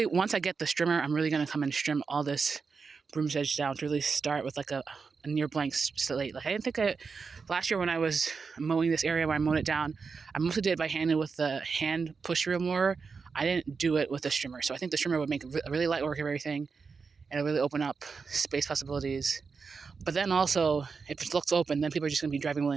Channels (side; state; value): left; quieter; 5.1 dB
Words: I get the strimmer, I'm really going to come and trim all this broom sedge down to really start with like a near blank slate. Like I didn't think last year when I was mowing this area, when I mowed it down, I mostly did it by hand with the hand push wheel mower. I didn't do it with the strimmer. So I think the strimmer would make a really light work of everything, and it'll really open up space possibilities. But then also, if it looks open, then people are just going to be driving